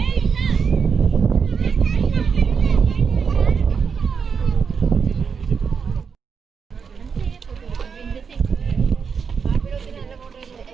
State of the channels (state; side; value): quieter; left; 6.1 dB